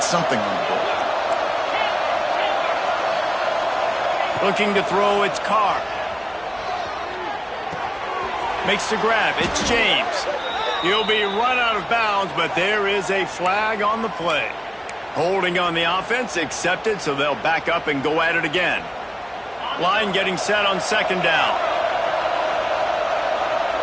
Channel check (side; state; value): both; identical; correlation 1.00